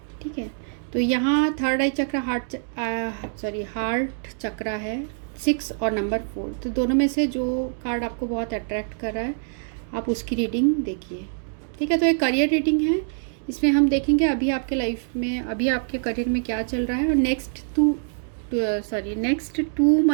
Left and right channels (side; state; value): left; silent; digital silence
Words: ठीक है, तो यहाँ थर्ड आई चक्रा हार्ट चक्रा है 6 और नंबर 4। तो दोनों में से जो कार्ड आपको बहुत अट्रैक्ट कर रहा है आप उसकी रीडिंग देखिए। ठीक है, तो एक करियर रीडिंग है। इसमें हम देखेंगे अभी आपके लाइफ में, अभी आपके करियर में क्या चल रहा है, और नेक्स्ट 2